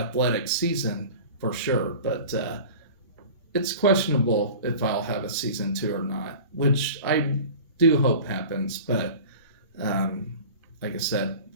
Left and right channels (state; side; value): inverted; both; correlation -0.38